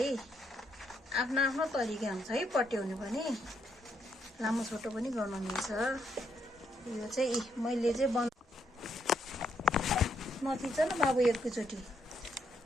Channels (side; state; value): both; normal; correlation 0.76